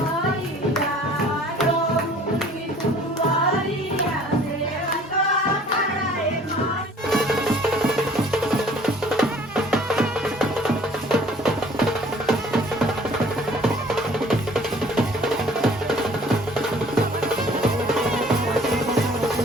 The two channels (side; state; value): both; normal; correlation 0.53